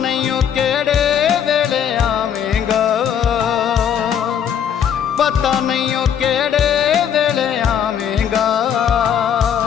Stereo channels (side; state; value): right; quieter; 8.7 dB